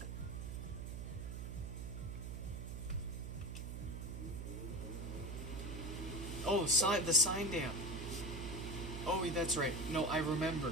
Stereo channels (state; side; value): noise; right; hum, 6 dB below the sound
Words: Oh, the sign damp. Oh, that's right. No, I